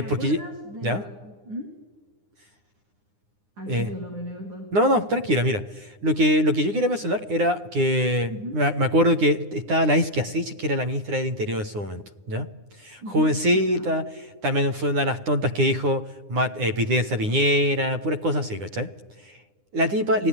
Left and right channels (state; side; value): late; left; 9.8 ms